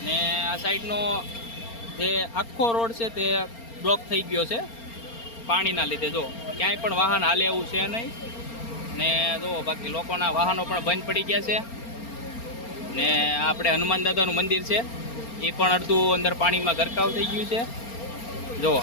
ને આ સાઈડનો જે આખો રોડ છે તે બ્લોક થઈ ગયો છે પાણીના લીધે. જો ક્યાંય પણ વાહન હાલે એવું છે નહીં ને જુઓ બાકી લોકોના વાહનો પણ બંધ પડી ગયા છે. ને આપણે હનુમાન દાદાનું મંદિર છે એ પણ અડધું અંદર પાણીમાં ગરકાવ થઈ ગયું છે. જુઓ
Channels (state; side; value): late; right; 4.3 ms